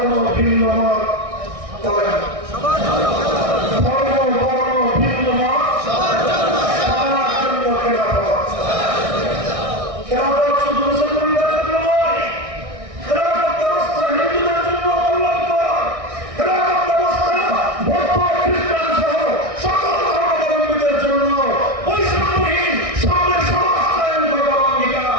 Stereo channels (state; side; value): late; left; 1.6 ms